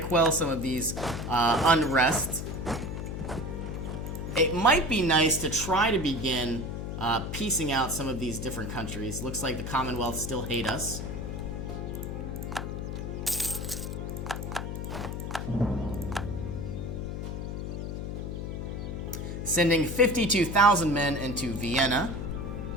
some of these unrest. It might be nice to try to begin piecing out some of these different countries. Looks like the Commonwealth still hate us. Sending 52,000 men into Vienna.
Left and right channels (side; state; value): left; noise; hum, 5 dB below the sound